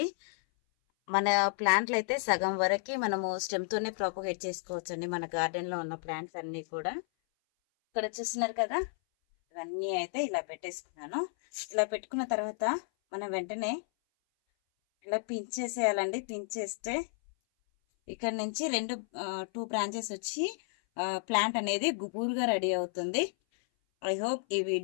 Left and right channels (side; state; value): right; silent; 56 dB below the other